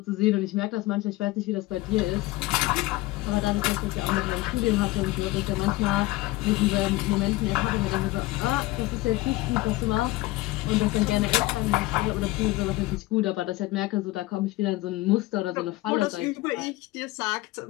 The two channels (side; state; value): right; quieter; 19.2 dB